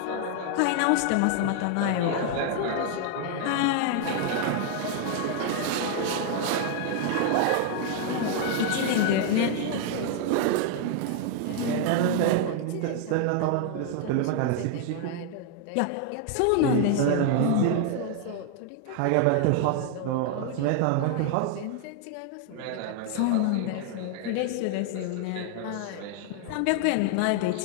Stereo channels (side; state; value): both; different; correlation 0.00